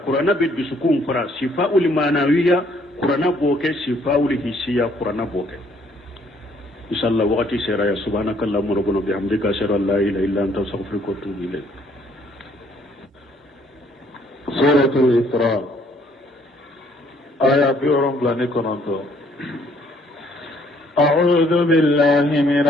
qur'ana be dusukun fara shifaa'ul manawiya qur'ana boke shifaa'ul hisiya qur'ana boke inshallah waqti sera ya subhanakallahumma rabbana bihamdika ashhadu an la ilaha illa anta astaghfiruka wa atubu ilayk suratul isra aya bi'urum blanikonanto أعوذ بالله من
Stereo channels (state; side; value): normal; both; correlation 0.64